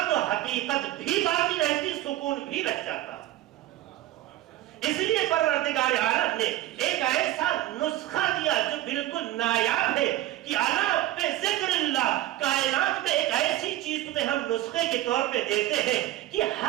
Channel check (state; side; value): quieter; left; 14.6 dB